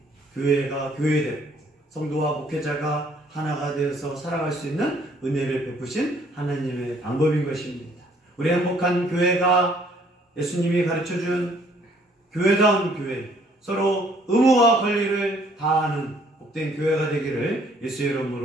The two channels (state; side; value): normal; both; correlation 0.62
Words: 교회가 교회되고 성도와 목회자가 하나가 되어서 살아갈 수 있는 은혜를 베푸신 하나님의 방법인 것입니다. 우리 행복한 교회가 예수님이 가르쳐준 교회다운 교회, 서로 의무와 권리를 다하는 복된 교회가 되기를 예수의